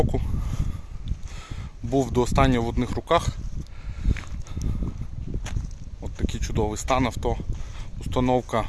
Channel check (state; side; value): identical; both; correlation 1.00